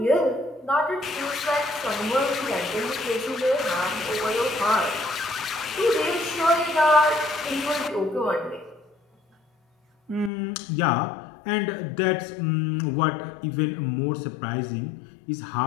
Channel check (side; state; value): right; drops out; at 10.3 s